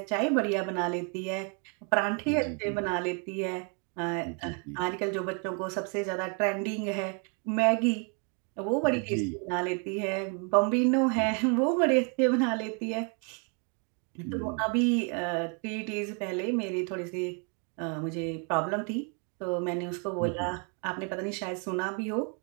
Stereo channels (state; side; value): quieter; left; 37.6 dB